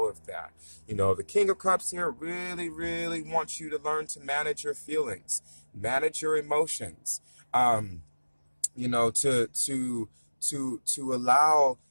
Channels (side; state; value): both; inverted; correlation -1.00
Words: of that. The King of Cups here really, really wants you to learn to manage your feelings, manage your emotions.